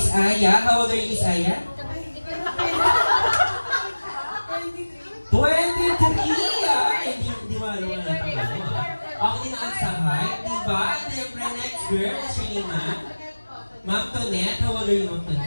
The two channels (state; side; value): inverted; both; correlation -1.00